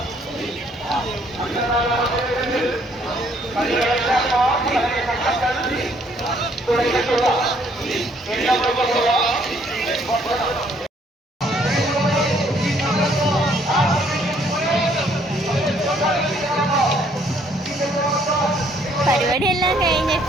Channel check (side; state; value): both; normal; correlation 0.65